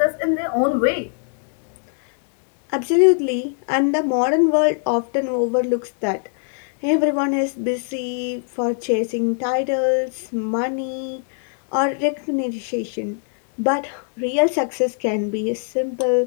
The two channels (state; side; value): silent; right; 57 dB below the other